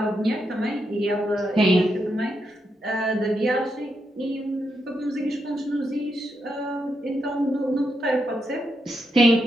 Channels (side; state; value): both; normal; correlation 0.82